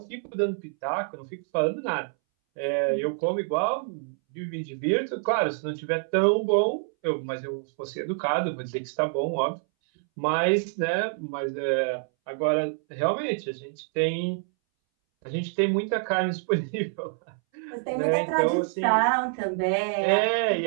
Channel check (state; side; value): silent; left; 60 dB below the other